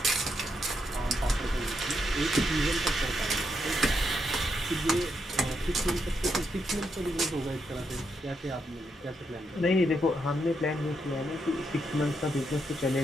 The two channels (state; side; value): normal; both; correlation 0.80